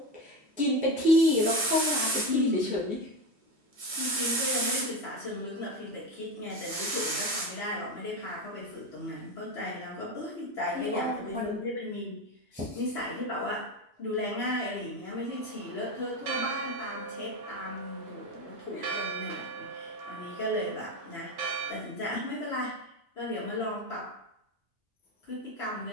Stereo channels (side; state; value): both; normal; correlation 0.18